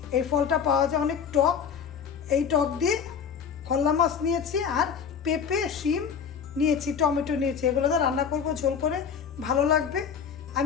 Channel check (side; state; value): right; quieter; 7.0 dB